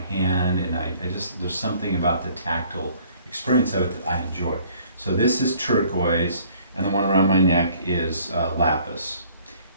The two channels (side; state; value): both; inverted; correlation -0.58